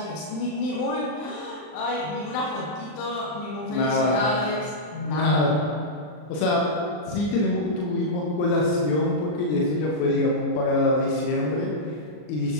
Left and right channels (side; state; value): right; late; 40 ms